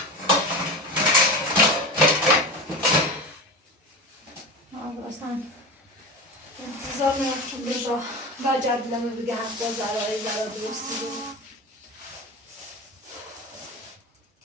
اصلا انتظار میرفتم رضا و جدلمه بگه حتی زرای زرا درستی رو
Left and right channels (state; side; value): normal; both; correlation 0.27